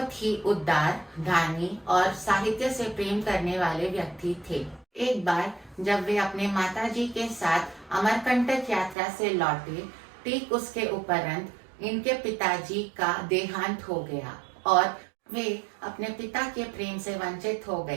ही उदार, दानी और साहित्य से प्रेम करने वाले व्यक्ति थे। एक बार जब वे अपने माताजी के साथ अमरकंटक यात्रा से लौटे, ठीक उसके उपरांत इनके पिताजी का देहांत हो गया और वे अपने पिता के प्रेम से वंचित हो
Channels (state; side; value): drops out; left; at 9.0 s